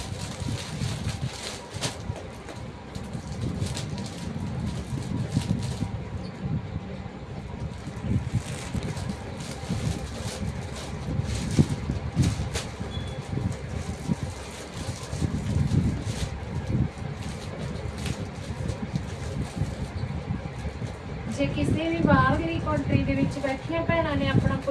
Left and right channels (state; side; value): identical; both; correlation 1.00